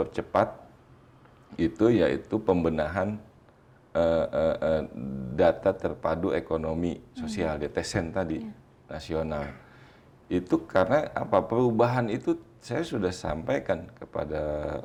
itu yaitu pembenahan data terpadu ekonomi sosial, DTSEN tadi, nasional. Itu karena apa? Perubahan itu saya sudah sampaikan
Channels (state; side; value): identical; both; correlation 1.00